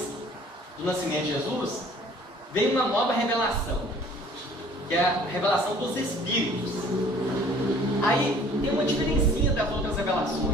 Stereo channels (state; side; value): normal; both; correlation 0.52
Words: do nascimento de Jesus, veio uma nova revelação, que é a revelação dos Espíritos. Aí tem uma diferencinha das outras